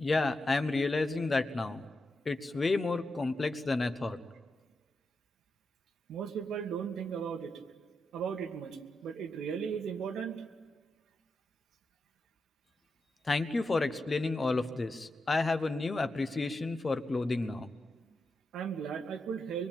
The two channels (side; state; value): both; normal; correlation 0.87